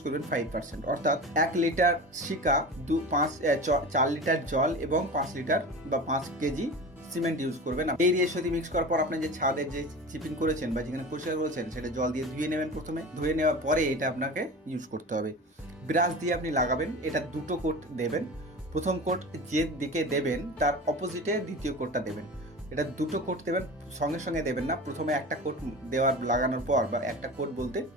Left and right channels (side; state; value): both; normal; correlation 0.32